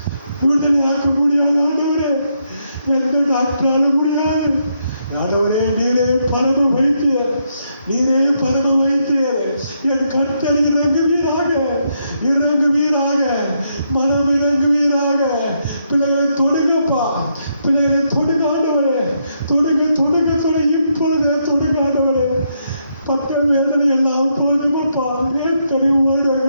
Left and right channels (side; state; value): both; inverted; correlation -0.78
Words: விடுதலை ஆக்க முடியாது ஆண்டவரே. எந்த டாக்டராலும் முடியாது ஆண்டவரே. நீரே பரம வைத்தியர், நீரே பரம வைத்தியர். என் கர்த்தர் இறங்குவீராக, இறங்குவீராக, மனம் இறங்குவீராக. பிள்ளைகளை தொடுங்கப்பா, பிள்ளைகளை தொடுங்க ஆண்டவரே, தொடுங்க, தொடுங்க, தொடு, இப்பொழுதே தொடுங்க ஆண்டவரே. பட்ட வேதனை எல்லாம் போதுமப்பா, எத்தனை